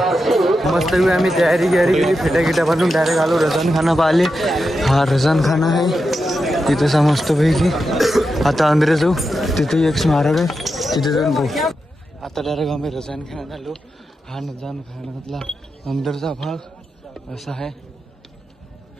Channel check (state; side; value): normal; both; correlation 0.88